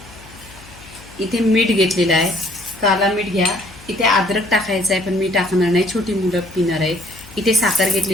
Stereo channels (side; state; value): left; noise; hum, 21 dB below the sound